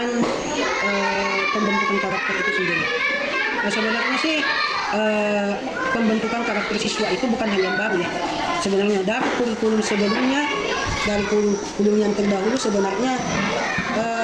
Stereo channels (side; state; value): both; identical; correlation 1.00